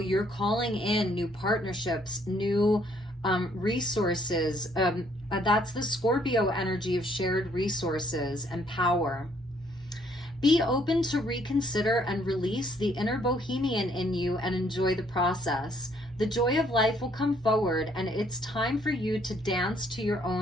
calling in new partnerships, new resources. That's the Scorpio energy of shared resources and power. Be open to reconsider and release the inner bohemian in you and enjoy the process. The joy of life will come forward, and it's time for you to dance to your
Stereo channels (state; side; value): normal; both; correlation 0.66